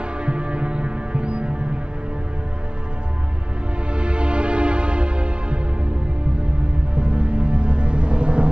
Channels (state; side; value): late; left; 0.056 ms